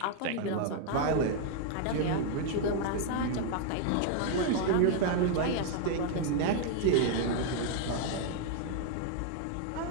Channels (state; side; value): different; both; correlation 0.00